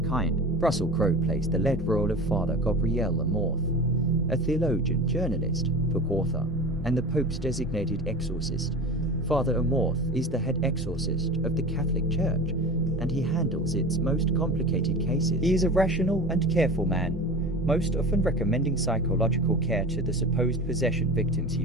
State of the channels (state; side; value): normal; both; correlation 0.33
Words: Russell Crowe plays the lead role of Father Gabriel Amorth, a theologian, journalist, book author, and the Pope's designated exorcist. Father Amorth is the head exorcist of the Catholic Church, and he handles its most complicated cases. He is a rational and careful man, most often recommending psychological care to the supposed possession victims he